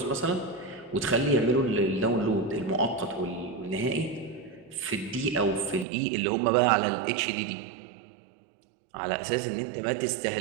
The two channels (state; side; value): drops out; left; at 5.9 s